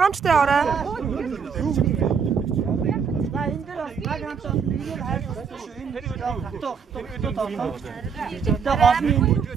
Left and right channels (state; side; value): quieter; left; 6.3 dB